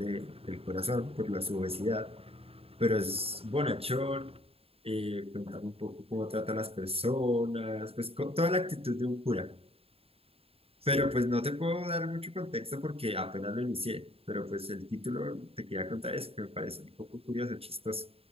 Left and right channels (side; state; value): left; late; 0.28 ms